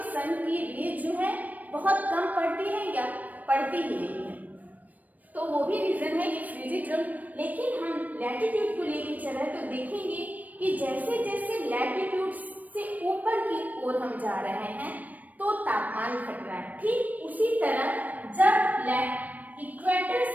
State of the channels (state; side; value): late; left; 0.078 ms